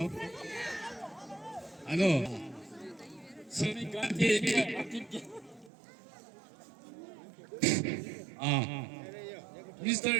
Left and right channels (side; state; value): left; drops out; at 5.7 s